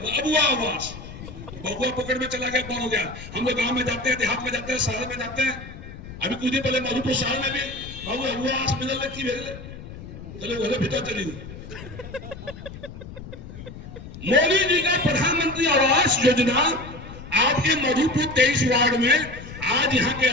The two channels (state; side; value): noise; left; rumble, 13 dB below the sound